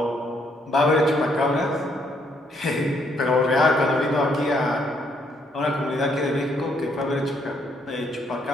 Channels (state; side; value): normal; both; correlation 0.71